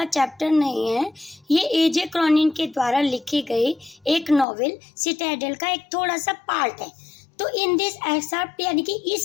चैप्टर नहीं है। ये एजे क्रॉनिन के द्वारा लिखे गए एक नॉवेल सिटाडेल का एक थोड़ा सा पार्ट है। तो इन दिस एक्सर्प्ट यानी कि इस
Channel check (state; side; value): drops out; right; at 4.5 s